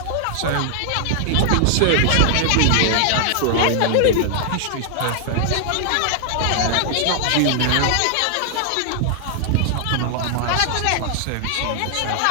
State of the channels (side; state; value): both; different; correlation 0.00